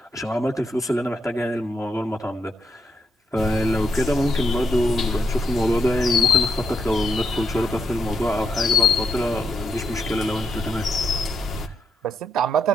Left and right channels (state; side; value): normal; both; correlation 0.78